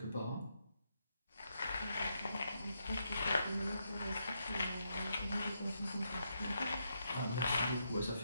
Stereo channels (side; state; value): both; inverted; correlation -0.81